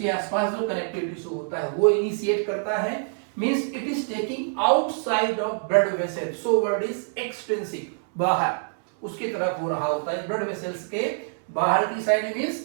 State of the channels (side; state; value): left; silent; digital silence